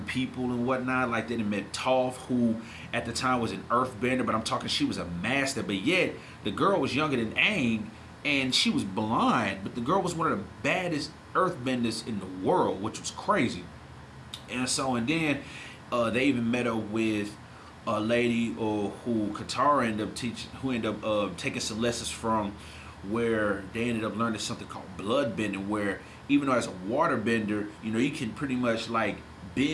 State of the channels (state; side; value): identical; both; correlation 1.00